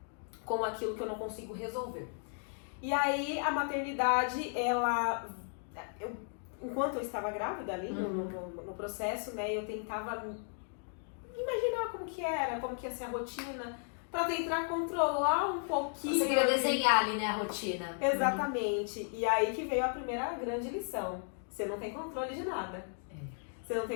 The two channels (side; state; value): right; silent; 54 dB below the other